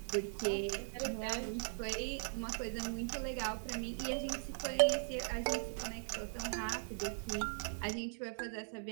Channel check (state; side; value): silent; left; digital silence